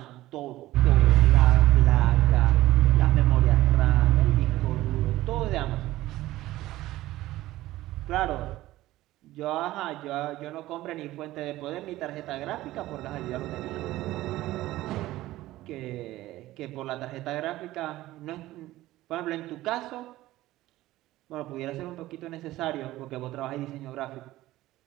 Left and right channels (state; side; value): quieter; left; 16.3 dB